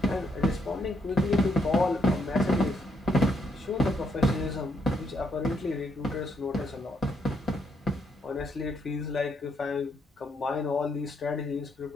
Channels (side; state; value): both; normal; correlation 0.75